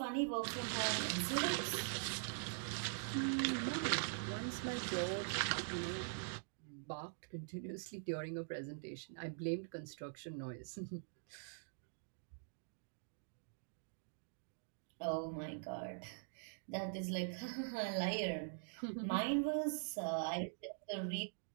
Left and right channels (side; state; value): left; silent; digital silence